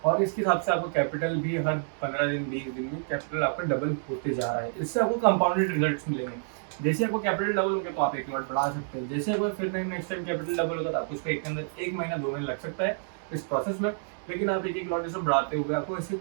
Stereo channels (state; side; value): silent; left; 59 dB below the other